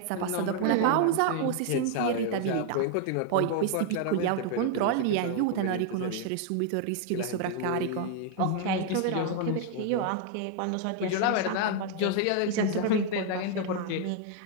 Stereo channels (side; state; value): both; different; correlation 0.00